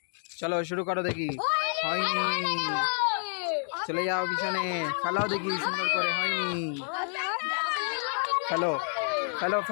চলো শুরু করো দেখি, হয়নি চলে যাও পিছনে। ফেলাও দেখি সুন্দর করে, হয়নি ফেলো ফেলো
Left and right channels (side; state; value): right; silent; 57 dB below the other